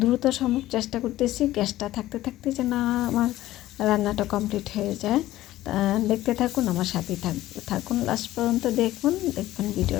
সম্ভব চেষ্টা করতেছি গ্যাসটা থাকতে থাকতে যেন আমার রান্নাটা কমপ্লিট হয়ে যায়। দেখতে থাকুন, আমার সাথেই থাকুন, লাস্ট পর্যন্ত দেখুন। দেখবেন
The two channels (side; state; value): right; quieter; 15.2 dB